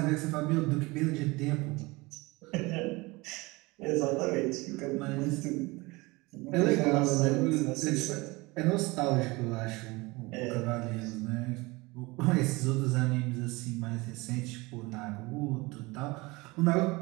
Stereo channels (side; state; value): left; quieter; 23.5 dB